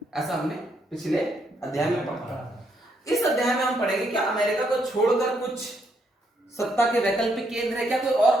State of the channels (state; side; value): normal; both; correlation 0.74